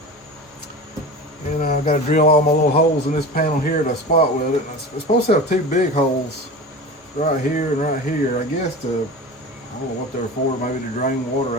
And I've got to drill all my little holes in this panel here to spot weld it. It's supposed to have two big holes right here and right here. I guess to, I don't know what they're for, maybe to drain water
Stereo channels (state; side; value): normal; both; correlation 0.32